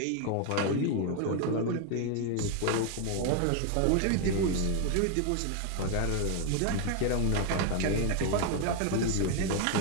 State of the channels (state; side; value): different; both; correlation 0.01